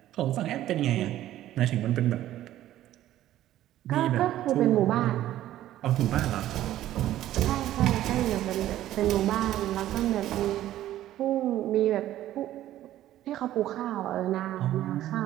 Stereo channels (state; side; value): quieter; left; 13.4 dB